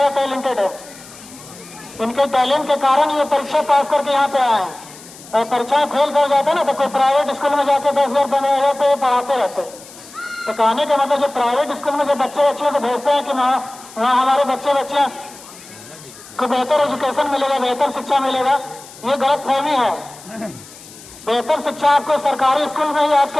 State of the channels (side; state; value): left; noise; hiss, 19 dB below the sound